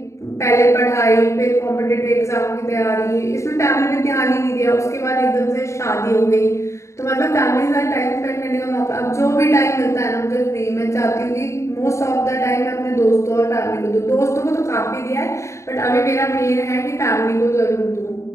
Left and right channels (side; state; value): right; late; 0.14 ms